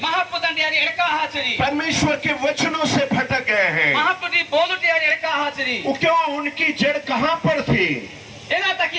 महापुत्र यारी एड़का हाचरी परमेश्वर के वचनों से भटक गए हैं। महापुत्री बोलते यारी एड़का हाचरी वो क्यों? उनकी जड़ कहाँ पर थी? एना तक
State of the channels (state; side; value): identical; both; correlation 1.00